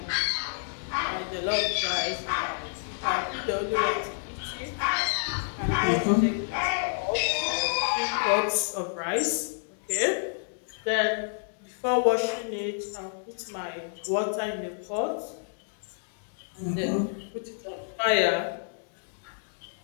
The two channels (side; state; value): right; silent; digital silence